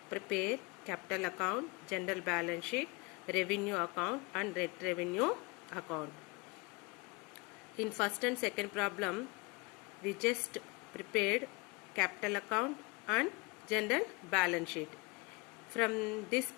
prepare capital account, general balance sheet, revenue account and net revenue account. In first and second problem, we just prepared capital account and general balance sheet. From this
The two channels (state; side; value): quieter; right; 27.5 dB